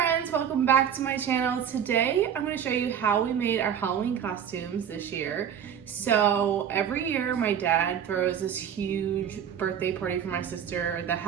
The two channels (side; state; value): left; quieter; 8.6 dB